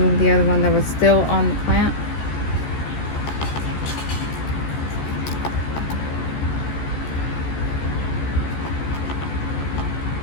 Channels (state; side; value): late; right; 14 ms